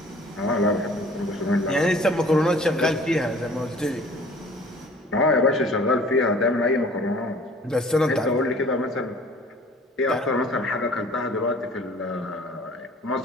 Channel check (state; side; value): normal; both; correlation 0.50